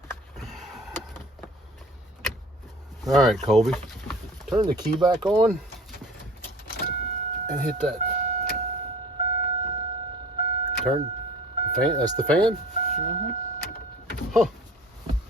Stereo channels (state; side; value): normal; both; correlation 0.44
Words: All right, Colby, turn the key back on and hit that. Turn the fan. That's the fan? Mm-hmm. Huh.